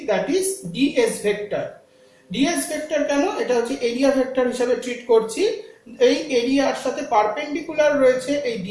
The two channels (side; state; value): both; identical; correlation 1.00